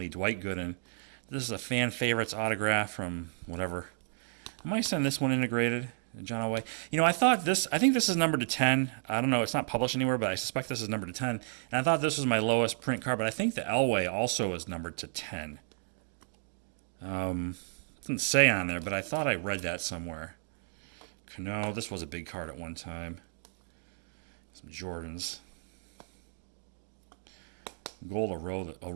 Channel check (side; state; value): left; silent; digital silence